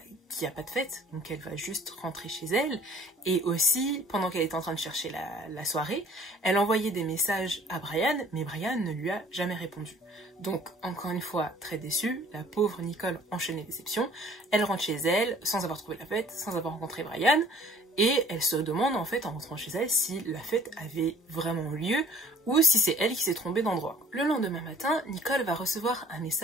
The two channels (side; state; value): both; normal; correlation 0.52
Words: qu'il n'y a pas de fête, donc elle va juste rentrer chez elle. Et aussi, pendant qu'elle était en train de chercher la soirée, elle envoyait des messages à Brian, mais Brian ne lui a jamais répondu. Donc, encore une fois, très déçue, la pauvre Nicole enchaîne les déceptions. Elle rentre chez elle, sans avoir trouvé la fête, sans avoir rencontré Brian, et elle se demande, en fait, en rentrant chez elle, si la fête avait vraiment lieu, ou si c'est elle qui s'est trompée d'endroit. Le lendemain matin, Nicole va recevoir un